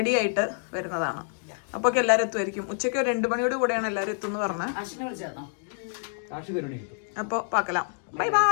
ആയിട്ട് വരുന്നതാണ്. അപ്പൊ എല്ലാരും എത്തുമായിരിക്കും. ഉച്ചയ്ക്ക് 2 മണിയോട് കൂടെയാണ് എല്ലാരും എത്തുമെന്ന് പറഞ്ഞ്. അപ്പൊ പാക്കലാം. Bye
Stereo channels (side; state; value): right; silent; 56 dB below the other